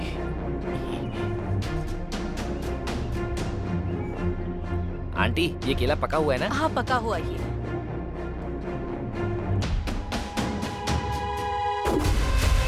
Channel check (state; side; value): identical; both; correlation 1.00